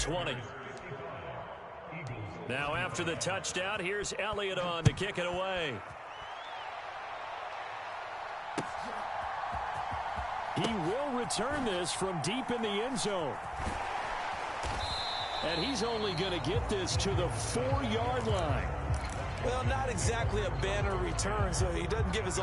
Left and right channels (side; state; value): both; identical; correlation 1.00